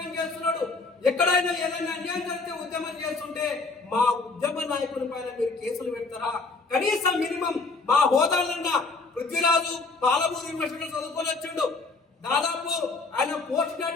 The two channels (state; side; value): quieter; right; 3.9 dB